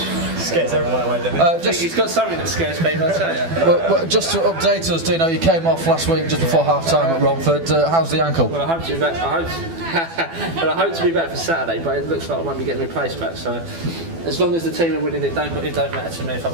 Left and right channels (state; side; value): late; left; 12 ms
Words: Scares everyone away, doesn't it? He's got something that scares people, I tell you. Well, just to update us, Dino, you came off last week just before half time at Romford. How's the ankle? Well, I hope to be back. I hope to be back for Saturday, but it looks like I won't be getting replaced back. So, as long as the team are winning, it don't matter to me if I